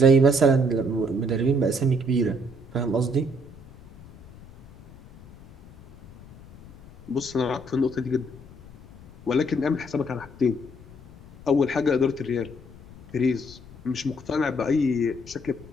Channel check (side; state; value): left; noise; rumble, 21 dB below the sound